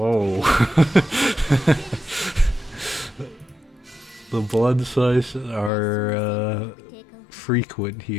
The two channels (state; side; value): drops out; right; at 5.7 s